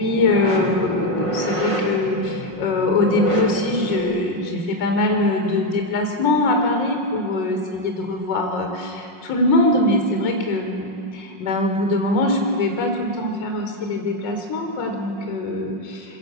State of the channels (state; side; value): late; left; 5.5 ms